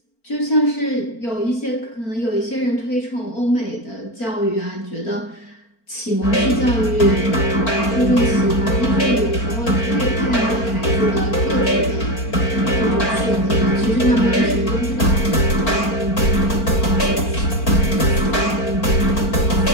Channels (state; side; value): late; right; 4.4 ms